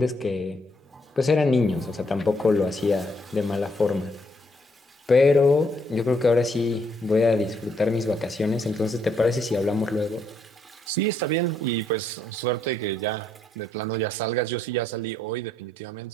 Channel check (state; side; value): normal; both; correlation 0.72